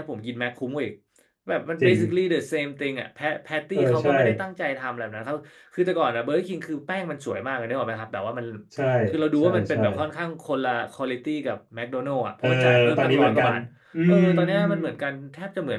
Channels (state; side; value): identical; both; correlation 1.00